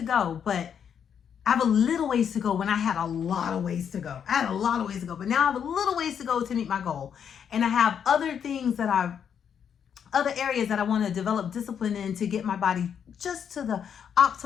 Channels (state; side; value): quieter; right; 8.0 dB